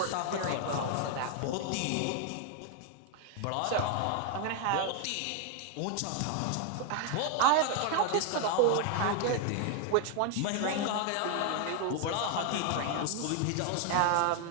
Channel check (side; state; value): both; different; correlation 0.00